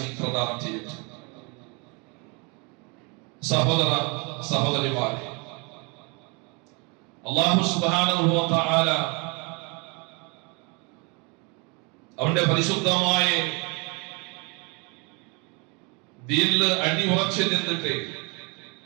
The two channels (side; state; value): left; quieter; 31.2 dB